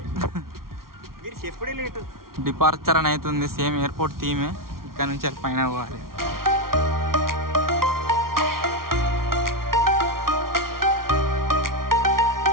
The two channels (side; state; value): left; late; 0.93 ms